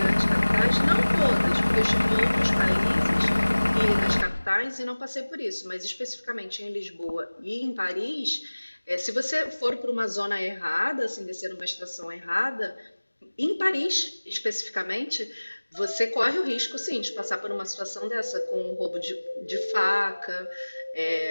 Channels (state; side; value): inverted; both; correlation -1.00